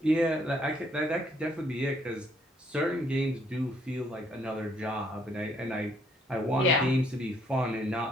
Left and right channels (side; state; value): both; normal; correlation 0.67